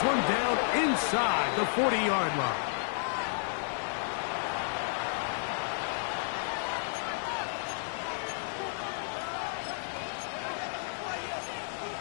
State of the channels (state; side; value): silent; right; digital silence